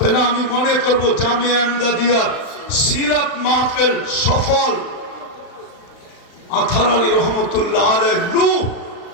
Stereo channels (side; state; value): right; late; 35 ms